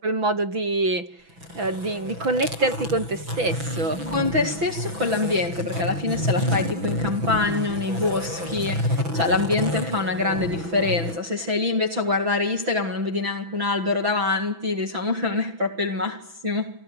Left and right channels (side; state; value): left; late; 6.0 ms